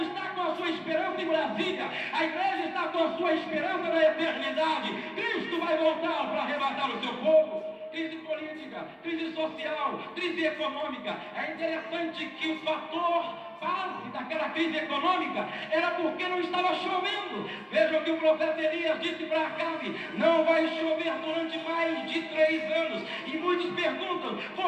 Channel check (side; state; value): both; identical; correlation 1.00